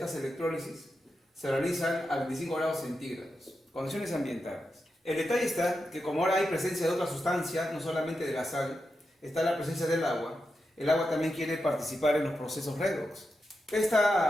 electrólisis, se realizan a 25 grados centígrados, condiciones ambientales. El detalle está que como ahora hay presencia de otra sustancia, no solamente de la sal, está la presencia del agua, el agua también quiere participar en los procesos redox.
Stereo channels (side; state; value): both; normal; correlation 0.88